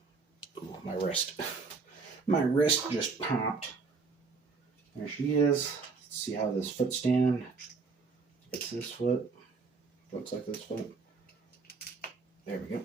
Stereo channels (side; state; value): left; quieter; 4.6 dB